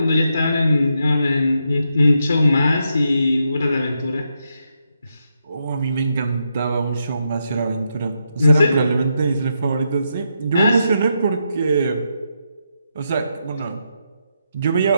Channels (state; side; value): inverted; both; correlation -0.82